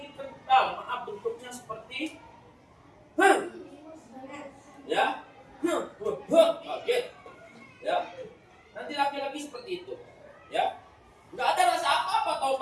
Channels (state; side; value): identical; both; correlation 1.00